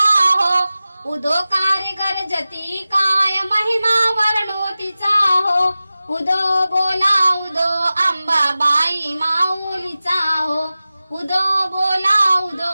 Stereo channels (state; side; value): inverted; both; correlation -0.96